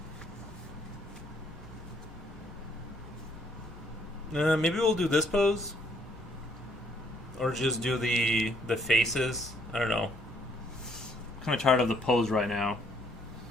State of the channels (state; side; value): normal; both; correlation 0.67